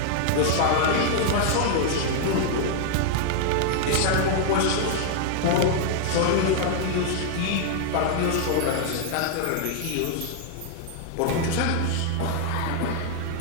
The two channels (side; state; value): both; different; correlation 0.00